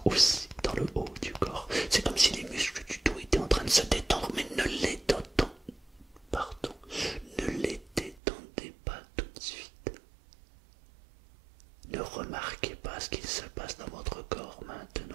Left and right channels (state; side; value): drops out; left; at 8.2 s